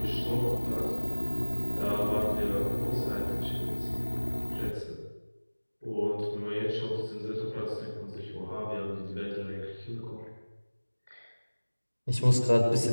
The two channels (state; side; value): inverted; both; correlation -1.00